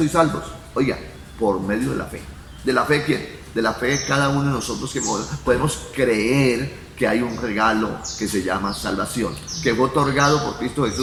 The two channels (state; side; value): identical; both; correlation 1.00